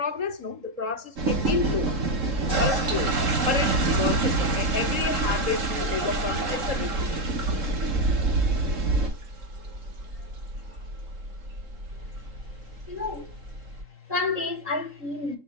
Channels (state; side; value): late; left; 3.7 ms